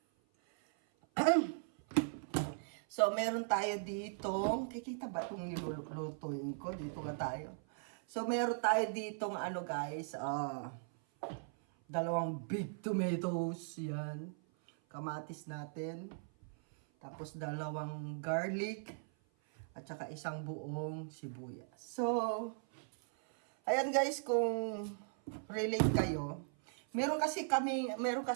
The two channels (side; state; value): left; silent; 52 dB below the other